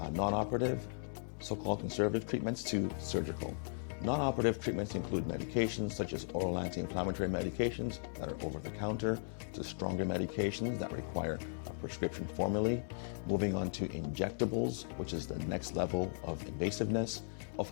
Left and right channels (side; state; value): right; silent; digital silence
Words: non-operative, so-called conservative treatments, to surgical. Non-operative treatments include medications such as oral anti-inflammatory medications that are over-the-counter, to stronger medications that require a prescription formally, moving on to injectables, which is the next level of invasiveness.